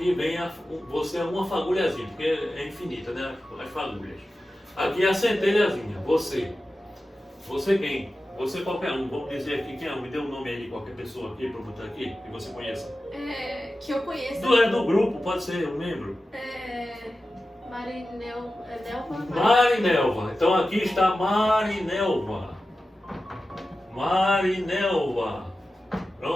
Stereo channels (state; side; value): normal; both; correlation 0.93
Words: vem você é uma fagulhazinha, porque é infinita, né, as fagulhas. Aqui é a centelhazinha, você quem? Você qualquer um, vamos dizer aqui quem é, me dê um nome aí de qualquer pessoa aqui para eu botar aqui, que você conheça. Que eu conheço. Do grupo, pode ser um membro. Marinelva. Marinelva. Então aqui está Marinelva.